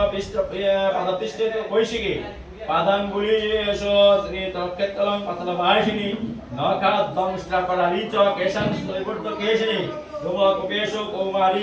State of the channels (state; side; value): identical; both; correlation 1.00